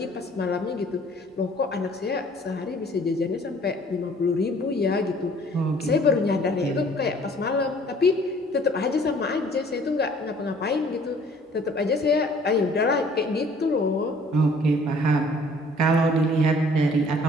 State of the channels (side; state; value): both; normal; correlation 0.55